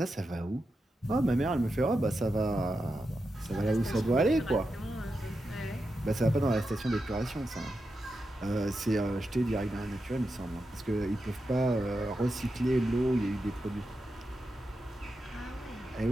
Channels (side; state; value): both; normal; correlation 0.88